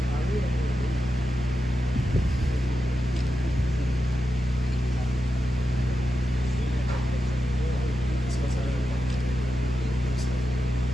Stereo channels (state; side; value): normal; both; correlation 0.90